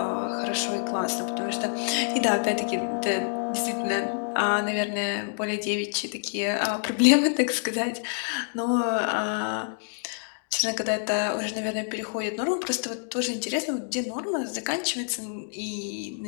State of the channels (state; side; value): silent; right; digital silence